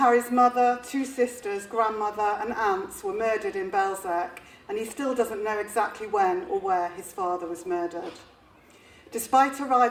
mother, two sisters, grandmother and aunts were murdered in Belzec, and he still doesn't know exactly when or where his father was murdered. Despite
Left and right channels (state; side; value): identical; both; correlation 1.00